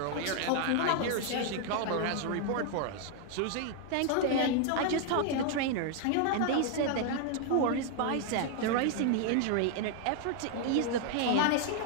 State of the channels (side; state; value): both; different; correlation 0.00